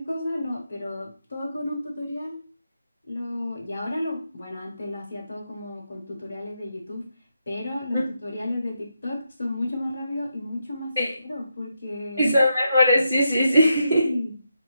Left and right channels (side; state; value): both; inverted; correlation -0.83